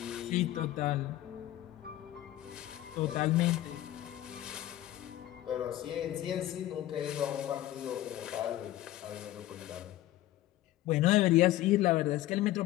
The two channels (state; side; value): quieter; right; 14.6 dB